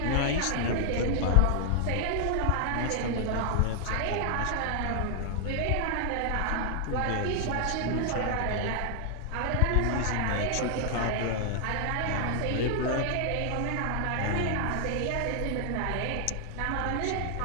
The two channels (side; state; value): both; different; correlation 0.00